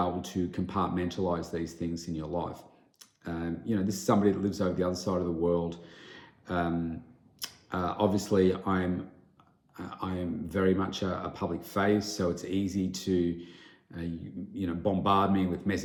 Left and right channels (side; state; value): both; identical; correlation 1.00